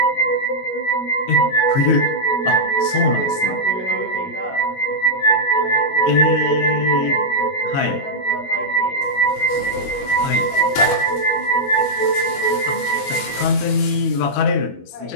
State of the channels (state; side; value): late; right; 21 ms